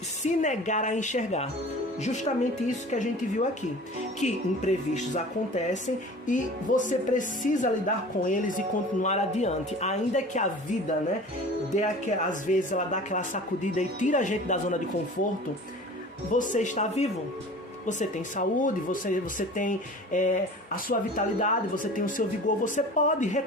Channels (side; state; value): both; normal; correlation 0.41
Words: se negar a enxergar. Justamente isso que a gente viu aqui. Que imprevistos acontecem e você precisa lidar com eles e continuar adiante. Ainda que a vida, né, às vezes ela dá aquela sacudida e tira a gente da zona de conforto, você está vivo. Você tem saúde, você tem a sua vitalidade, você tem o seu vigor, você pode